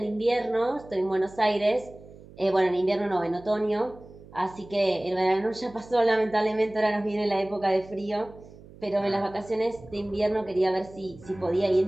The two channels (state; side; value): noise; right; hum, 20 dB below the sound